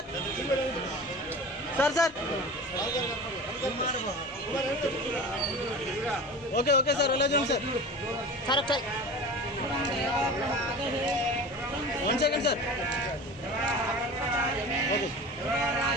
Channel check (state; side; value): normal; both; correlation 0.35